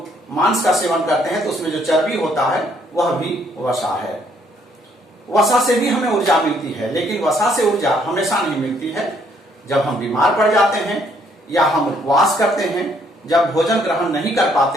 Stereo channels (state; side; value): normal; both; correlation 0.67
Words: मांस का सेवन करते हैं तो उसमें जो चर्बी होता है वह भी वसा है। वसा से भी हमें ऊर्जा मिलती है, लेकिन वसा से ऊर्जा हमेशा नहीं मिलती है। जब हम बीमार पड़ जाते हैं या हम उपवास करते हैं, जब भोजन ग्रहण नहीं कर